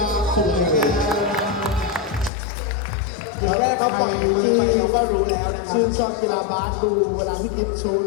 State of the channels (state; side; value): drops out; right; at 2.3 s